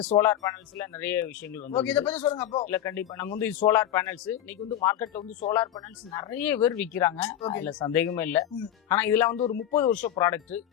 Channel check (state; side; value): quieter; right; 11.2 dB